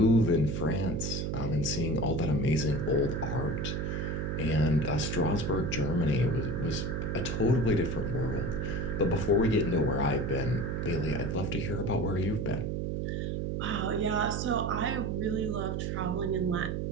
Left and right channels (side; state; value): right; noise; hum, 1 dB below the sound